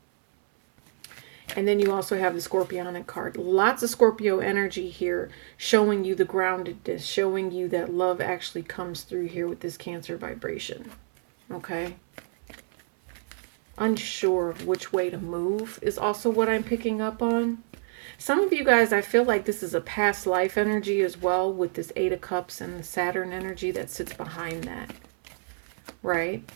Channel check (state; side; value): silent; left; 60 dB below the other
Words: And then you also have the Scorpionic card. Lots of Scorpio energy here, showing you the groundedness, showing you that love actually comes through here with this Cancer vibration. Okay. Unsure of which way to move is also what I'm picking up on. Some of you guys, I feel like this is a past life energy as well with this 8 of Cups and the Saturn energy that sits behind that. Right?